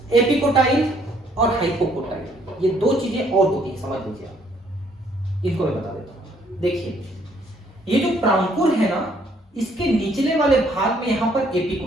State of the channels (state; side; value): normal; both; correlation 0.65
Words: एपिकोटाइल और हाइपोकोटाइल ये दो चीजें और होती है, समझ लीजिए आप, इनको मैं बता देता हूं। देखिए ये जो प्रांकुर है ना, इसके निचले वाले भाग में यहां पर